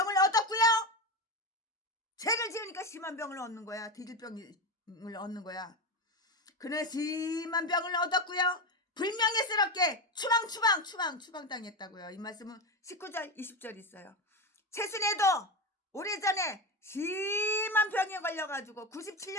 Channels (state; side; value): normal; both; correlation 0.17